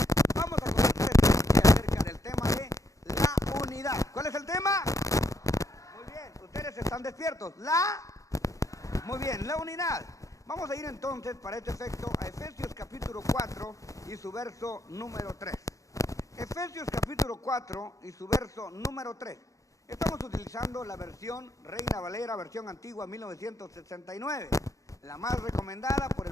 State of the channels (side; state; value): right; late; 0.16 ms